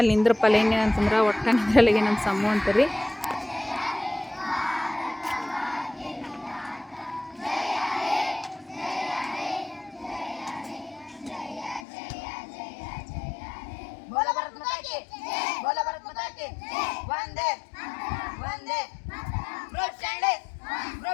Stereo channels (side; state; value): right; drops out; at 11.9 s